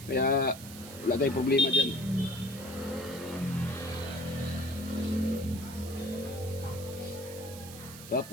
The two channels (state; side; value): noise; right; hiss, 14 dB below the sound